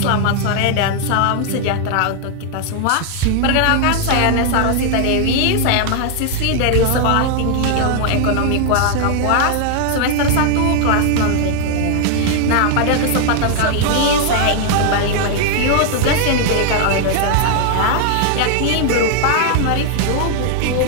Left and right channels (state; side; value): different; both; correlation 0.00